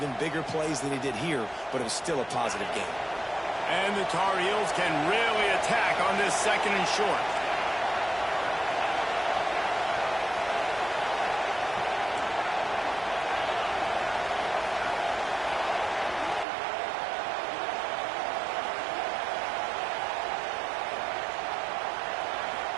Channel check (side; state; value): left; drops out; at 16.4 s